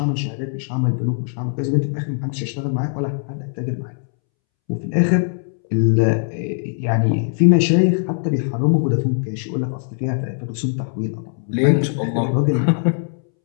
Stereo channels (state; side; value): silent; right; 65 dB below the other